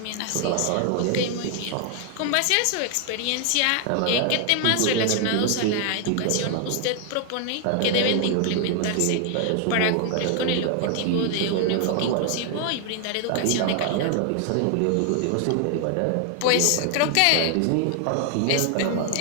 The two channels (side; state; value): both; different; correlation 0.00